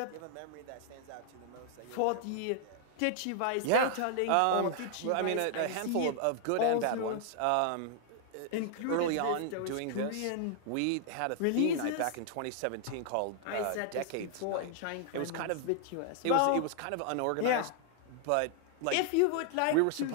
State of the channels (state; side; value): different; both; correlation 0.00